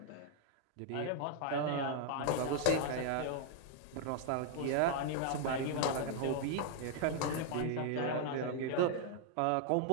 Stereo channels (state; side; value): different; both; correlation 0.00